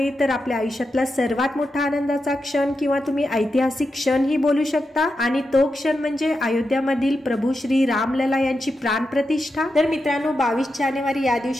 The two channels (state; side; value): normal; both; correlation 0.88